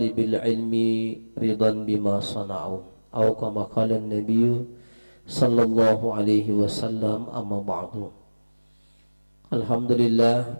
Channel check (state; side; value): inverted; both; correlation -1.00